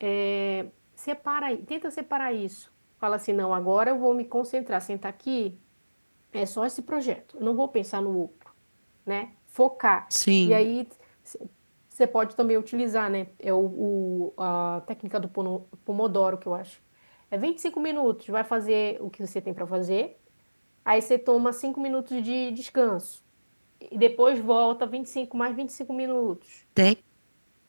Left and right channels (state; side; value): inverted; both; correlation -1.00